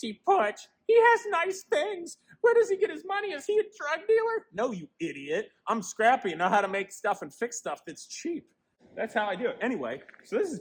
Putsch. He has nice things. Where does he get his money? Is he a drug dealer? No, you idiot. I'm scrappy and know how to make stuff and fix stuff that's cheap. That's how I do it. Anyway, so this is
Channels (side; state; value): both; identical; correlation 1.00